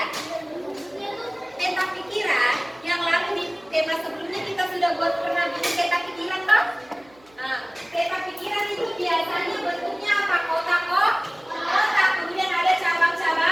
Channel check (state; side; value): noise; right; hum, 28 dB below the sound